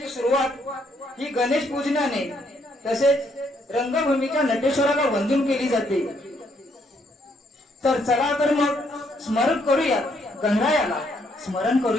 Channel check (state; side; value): normal; both; correlation 0.71